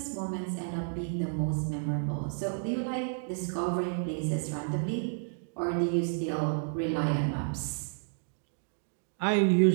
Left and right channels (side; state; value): left; silent; digital silence